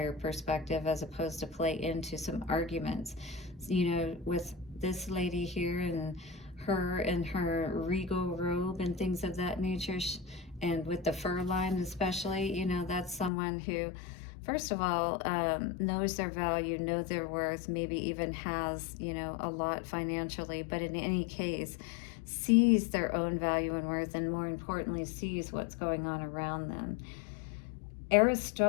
perspective as opposed to play into some arguments. You know, with this lady here and her and her regal robe and things of that nature, and with the fur line especially, you know, that's someone who, first of all, knows their value, knows their worth, maybe even has, you know, a lot financially, but in any case, sees their own value and worth, and more importantly, sees what's going on around them.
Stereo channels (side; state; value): right; drops out; at 13.3 s